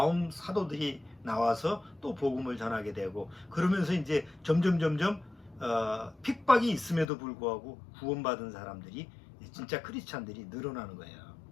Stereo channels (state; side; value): drops out; right; at 7.1 s